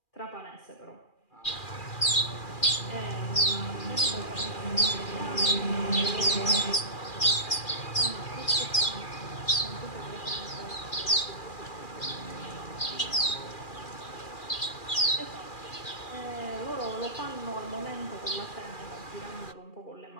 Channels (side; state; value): right; late; 2.4 ms